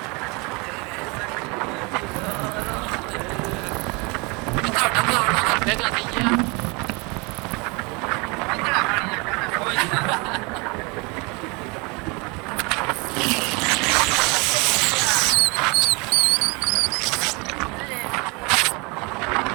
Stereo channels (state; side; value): quieter; left; 28.8 dB